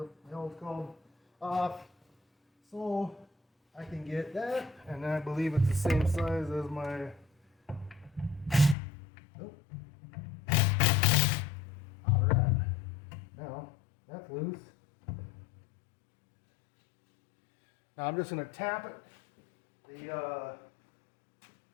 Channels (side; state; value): right; drops out; at 8.8 s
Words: hell it's called, off, so I can get that, and I believe it's the same size as my, oh, alright, now that's loose. Now I'm just going to tap it, the